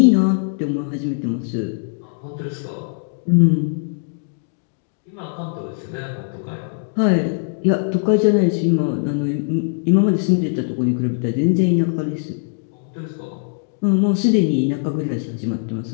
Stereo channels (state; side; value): silent; right; digital silence